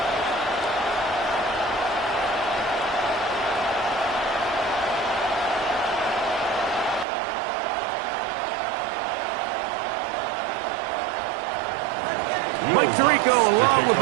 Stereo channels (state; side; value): drops out; left; at 7.1 s